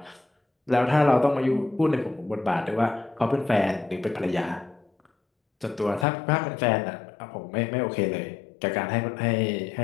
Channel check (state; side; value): drops out; right; at 6.1 s